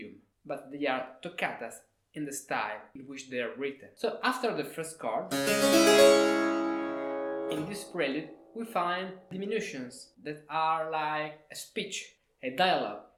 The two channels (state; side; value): identical; both; correlation 1.00